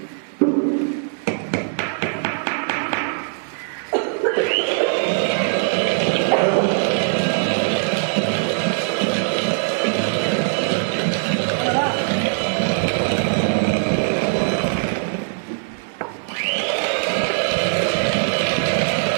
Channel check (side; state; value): left; silent; 65 dB below the other